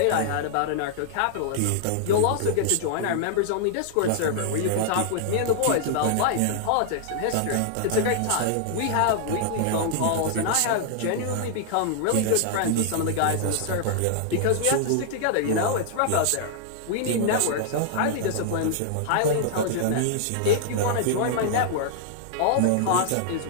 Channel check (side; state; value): both; different; correlation -0.01